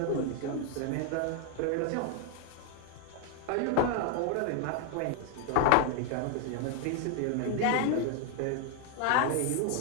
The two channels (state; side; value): different; both; correlation 0.00